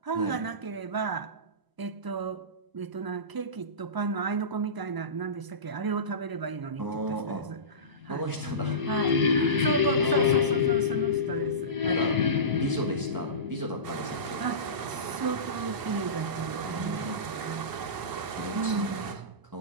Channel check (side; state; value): left; late; 1.0 ms